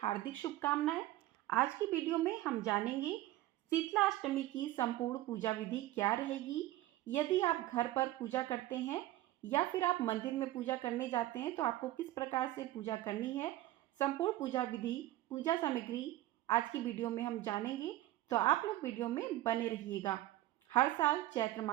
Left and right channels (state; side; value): quieter; left; 15.5 dB